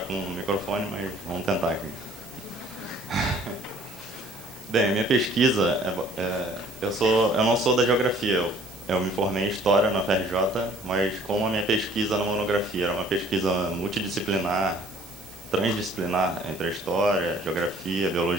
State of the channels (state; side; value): noise; right; hiss, 19 dB below the sound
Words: com o microfone, mas vamos tentar aqui. Bem, minha pesquisa, eu não sou da geografia, eu me formei em História na FRJ, mas como a minha pesquisa na monografia era uma pesquisa multidisciplinar, transdisciplinar entre a História, Geografia,